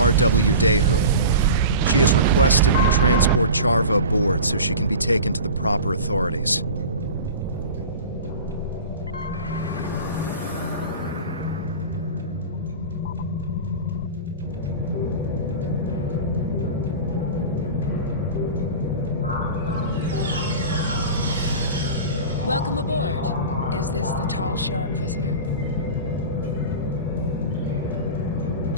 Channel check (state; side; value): inverted; both; correlation -0.34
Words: Daehu. She has requested we transport Charva aboard so she can be taken to the proper authorities. Welcome aboard. Is this the Tal Shiar prisoner?